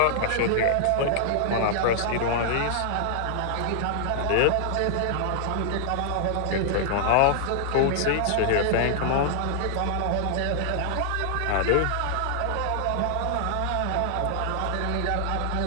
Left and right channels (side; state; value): both; different; correlation -0.01